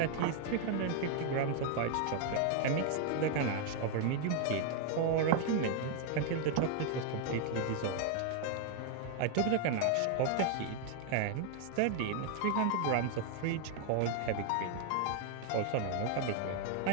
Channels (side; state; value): both; different; correlation 0.00